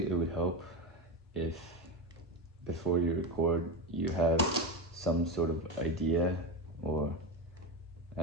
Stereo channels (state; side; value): normal; both; correlation 0.18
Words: it would help if before you record you have some sort of idea or